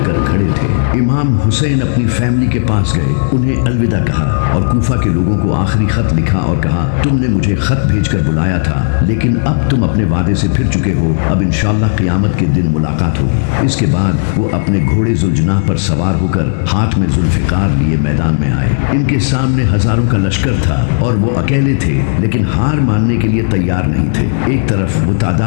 खड़े थे। इमाम हुसैन अपनी फैमिली के पास गए, उन्हें अलविदा कहा और कूफा के लोगों को आखिरी खत लिखा और कहा, तुमने मुझे खत भेजकर बुलाया था, लेकिन अब तुम अपने वादे से फिर चुके हो। अब इंशाअल्लाह क़यामत के दिन मुलाकात होगी। इसके बाद वो अपने घोड़े जुल्जनाह पर सवार होकर हाथ में जुल्फिकार लिए मैदान में आए। इनके सामने हजारों का लश्कर था और वो अकेले थे, लेकिन हार मानने के लिए तैयार नहीं थे। एक तरफ वो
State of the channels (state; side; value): silent; right; digital silence